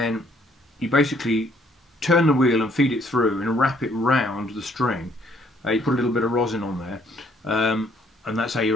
you basically turn the wheel and feed it through and wrap it round the string. You put a little bit of rosin on there, and that's how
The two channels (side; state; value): both; normal; correlation 0.65